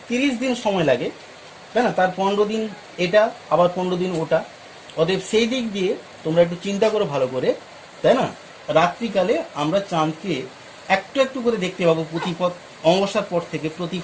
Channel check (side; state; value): both; identical; correlation 1.00